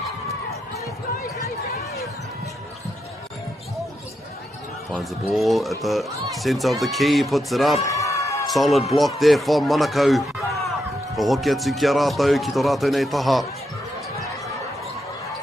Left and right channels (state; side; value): normal; both; correlation 0.83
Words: Finds the ball at the centre of the key, puts it up. Solid block there from Monaco. Ko hoki atu ki a rātou, ki tō rātou nei taha.